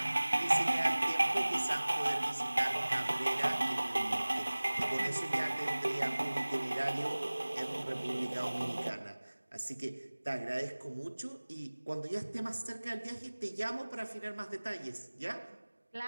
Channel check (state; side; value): inverted; both; correlation -1.00